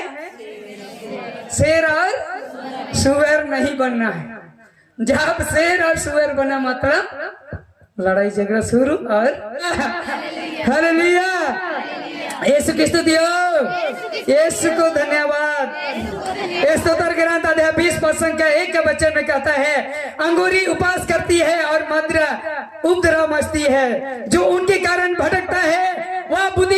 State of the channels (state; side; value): identical; both; correlation 1.00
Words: शेर और सुअर नहीं बनना है। जब शेर और सुअर बना मतलब लड़ाई झगड़ा शुरू। और हालेलुया, यीशु की स्तुति हो, यीशु को धन्यवाद। स्तोत्र ग्रंथ अध्याय 20 का 1 के वचन में कहता है, अंगूरी उपास करती है और मदिरा उपद्रव मचती है, जो उनके कारण भटकता है वह